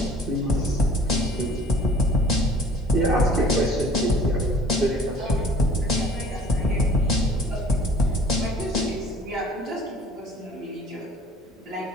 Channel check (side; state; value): both; normal; correlation 0.51